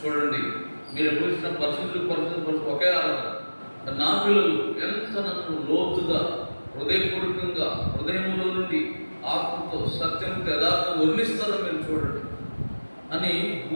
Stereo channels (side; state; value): both; inverted; correlation -1.00